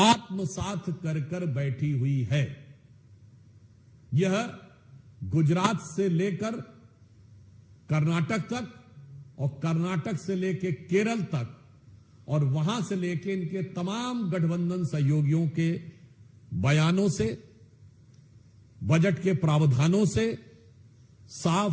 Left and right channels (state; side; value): identical; both; correlation 1.00